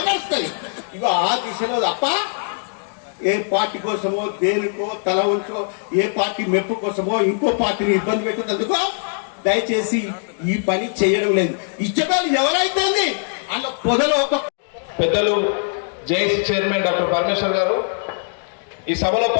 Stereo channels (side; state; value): right; silent; digital silence